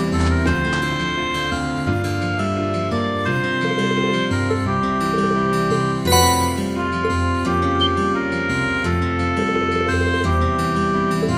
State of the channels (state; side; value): identical; both; correlation 1.00